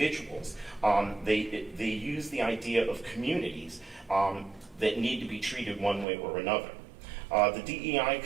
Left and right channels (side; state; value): left; drops out; at 6.1 s